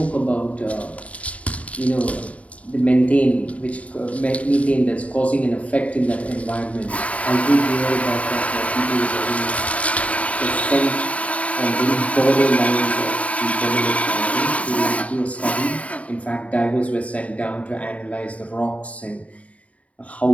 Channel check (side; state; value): right; late; 0.067 ms